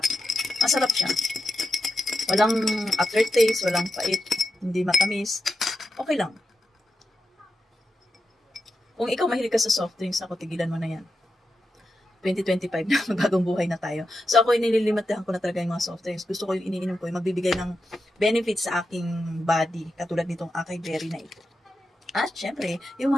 Masarap siya. Walang aftertaste, walang pait, hindi matamis. Okay lang. Kung ikaw mahilig ka sa soft drinks, ako tigilan mo na yan. 2025 na, bagong buhay na tayo. So ako nililimitahan ko na talaga yung mga soft drinks. Gusto ko yung iniinom ko, yung magbibigay ng benefits sa aking body, katulad nitong acai berry na ito. At syempre, yung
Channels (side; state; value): both; normal; correlation 0.89